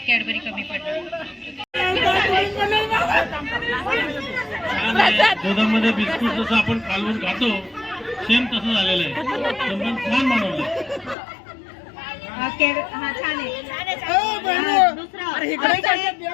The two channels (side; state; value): right; drops out; at 11.2 s